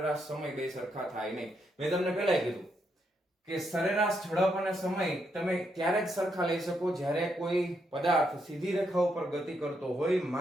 સમય બે સરખા થાય નહીં. મેં તમને પહેલા કીધું કે સરેરાશ ઝડપ અને સમય તમે ત્યારે જ સરખા લઈ શકો જ્યારે કોઈ પદાર્થ સીધી રેખા ઉપર ગતિ કરતો હોય,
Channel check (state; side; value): normal; both; correlation 0.79